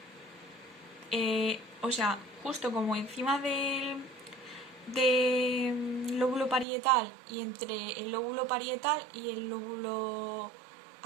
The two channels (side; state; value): left; drops out; at 6.7 s